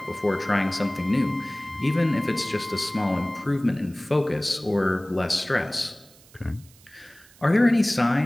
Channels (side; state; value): right; noise; hiss, 26 dB below the sound